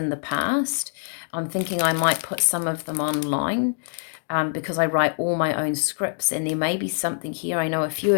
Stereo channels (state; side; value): silent; right; digital silence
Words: the past. I'm thinking I might put some of them online because I write all my own scripts, and there may be something here. I know a few